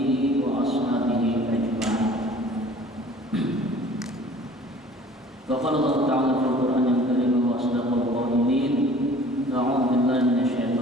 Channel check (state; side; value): normal; both; correlation 0.49